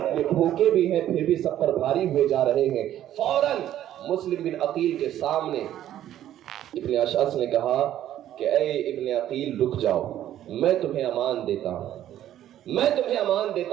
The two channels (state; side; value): quieter; left; 12.0 dB